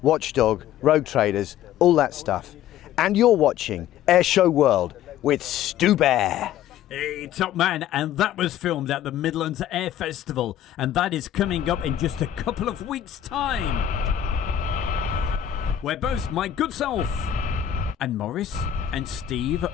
Watchdog, Rogue Traders, all that stuff. And you're watching Air Show World with Stu Bear. Hey, top man, and that was filmed at the Midlands Air Festival, and that is coming up in just a couple of weeks' time. Where both my good self and Morris and Steve,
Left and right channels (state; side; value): quieter; right; 10.9 dB